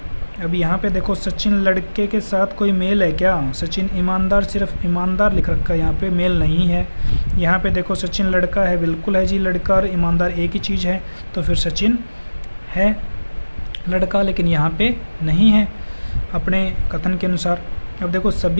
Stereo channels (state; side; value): inverted; both; correlation -1.00